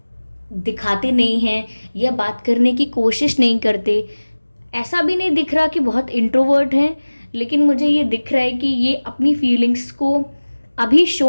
दिखाते नहीं हैं या बात करने की कोशिश नहीं करते। ऐसा भी नहीं दिख रहा कि बहुत इंट्रोवर्ट हैं, लेकिन मुझे ये दिख रहा है कि ये अपनी फीलिंग्स को अभी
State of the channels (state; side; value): inverted; both; correlation -1.00